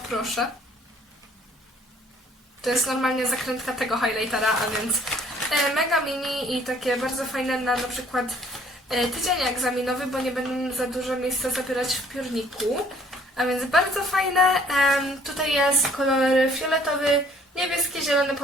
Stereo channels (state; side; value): normal; both; correlation 0.59